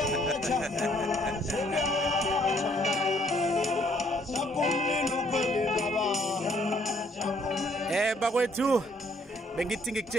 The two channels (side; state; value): both; normal; correlation 0.65